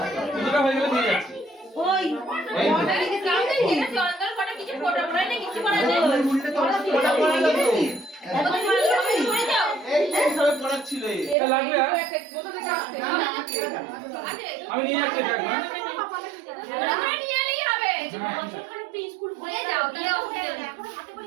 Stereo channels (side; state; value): left; drops out; at 11.4 s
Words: কিছুটা হয়ে গেলে দিয়ে যাচ্ছি ওই কিছু ফটো পড়াই না কিছু করা যায় এটা লাগবে আর আমি নিয়ে যাচ্ছি এটা নিয়ে এলেই হবে বছরখানেক তো স্কুল খুলে যাও তাহলে এখন হাতে করে